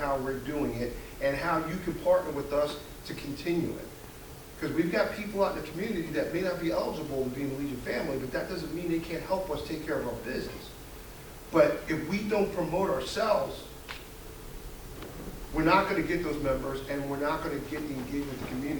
we're doing it and how you can partner with us to continue it. Because we've got people out in the community that may not be eligible to be in the Legion family, but that doesn't mean they can't help us take care of our business. But if we don't promote ourselves, we're not going to get those members, and we're not going to get the engagement with the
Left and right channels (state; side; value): identical; both; correlation 1.00